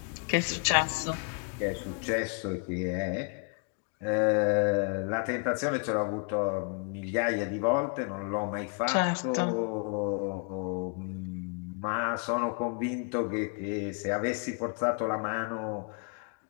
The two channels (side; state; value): right; quieter; 39.3 dB